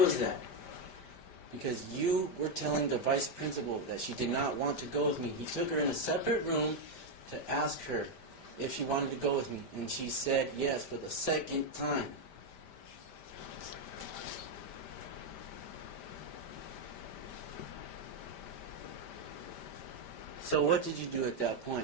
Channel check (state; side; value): late; right; 5.1 ms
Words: was that? Because you were telling the vice principal that she did not want to go with me. He took her in a separate room to ask her if she wanted to go with me, and she said yes for the second time. So what did you do at that